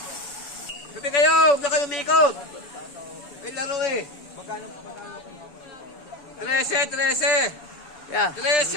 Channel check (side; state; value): right; late; 7.0 ms